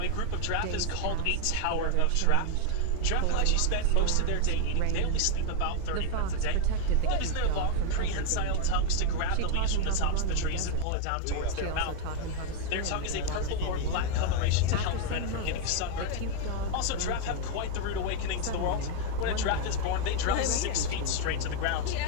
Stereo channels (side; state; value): both; different; correlation 0.00